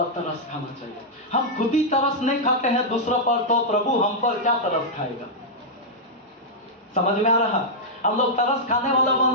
तरस खाना चाहिए। हम खुद ही तरस नहीं खाते हैं दूसरों पर, तो प्रभु हम पर क्या तरस खाएगा? समझ में आ रहा? हम लोग तरस खाने वाला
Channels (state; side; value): normal; both; correlation -0.07